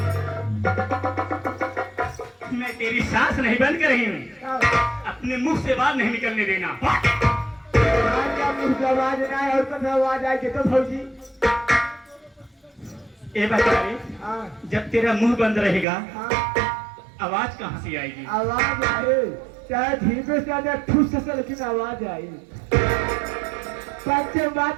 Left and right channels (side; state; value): left; drops out; at 15.9 s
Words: मैं तेरी सांस नहीं बंद कर रही हूँ अपने मुख से बात नहीं निकलने देना। मुंह से आवाज ना आए और कभी आवाज आए तो भौजी ए बता रे जब तेरा मुंह बंद रहेगा आवाज कहाँ से आएगी। आवाज आए चाहे धीरे से आए ठूस से लेकिन आवाज आई पंच